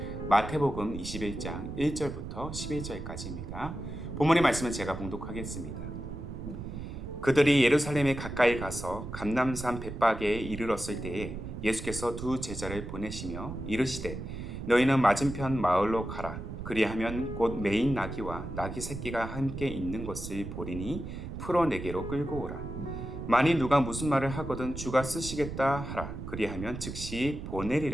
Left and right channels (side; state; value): right; noise; rumble, 8 dB below the sound